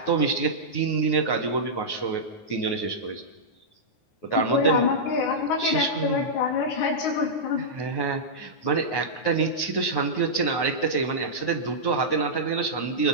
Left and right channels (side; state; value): right; late; 9.5 ms